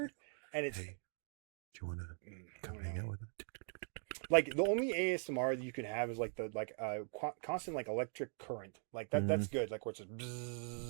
and it's. Hey, do you want to I come don't hang know. out with us? Like the only ASMR that you can have is like the constant like electric current. Like that. That's good. Like where it's just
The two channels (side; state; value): left; silent; 50 dB below the other